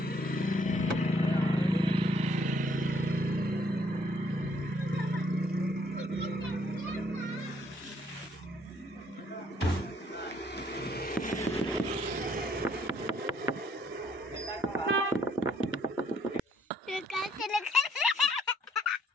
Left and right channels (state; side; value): normal; both; correlation 0.66